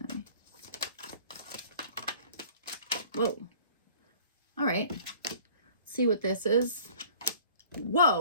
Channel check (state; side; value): inverted; both; correlation -0.49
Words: Whoa. All right. Let's see what this is.